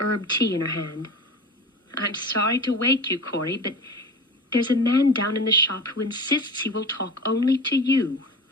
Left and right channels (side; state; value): both; normal; correlation 0.33